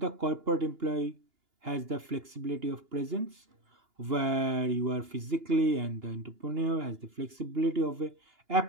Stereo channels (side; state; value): left; late; 2.9 ms